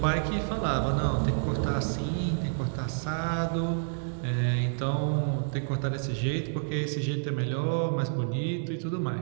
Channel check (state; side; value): silent; left; 59 dB below the other